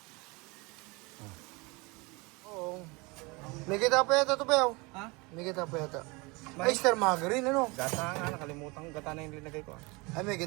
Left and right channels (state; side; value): quieter; left; 26.2 dB